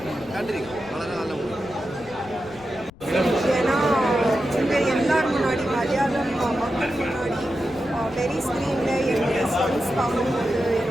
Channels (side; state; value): left; noise; rumble, 22 dB below the sound